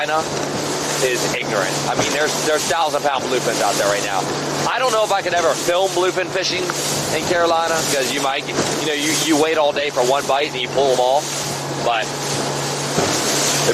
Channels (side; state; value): both; identical; correlation 1.00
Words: is ignorant. I mean, there's 1,000-pound bluefins out there right now. I don't know if I could ever film bluefin fishing in Carolina, because you might, you wait all day for one bite and you pull them off, but